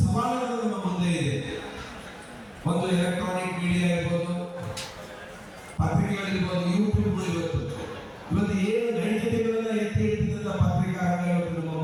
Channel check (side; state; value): both; identical; correlation 1.00